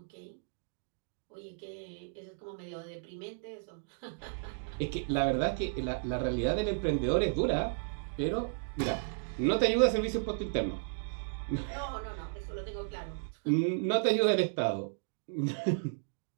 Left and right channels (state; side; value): silent; left; digital silence